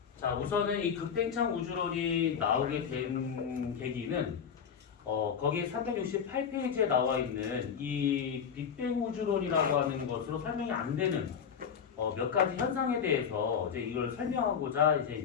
자, 우선은 이 급팽창 우주론이 나오게 된 계기는 거기에 368페이지에 나와 있는 이 빅뱅 우주론이라고 하는 것으로 설명이 안 되는 몇 가지 현상에 대해서 이제 이걸 설명하고자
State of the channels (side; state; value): right; quieter; 7.2 dB